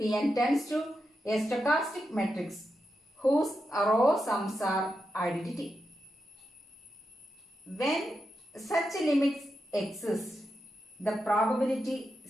tends to a stochastic matrix whose row sums are identity. When such limits exist, the probability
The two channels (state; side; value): normal; both; correlation 0.87